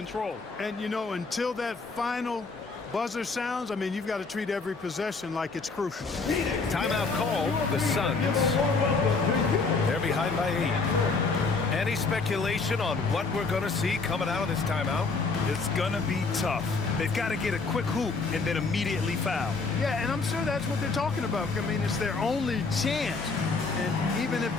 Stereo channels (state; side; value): quieter; right; 4.2 dB